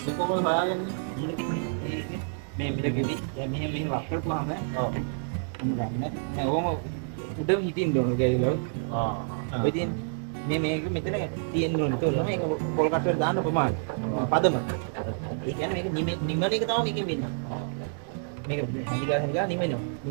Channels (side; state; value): left; silent; digital silence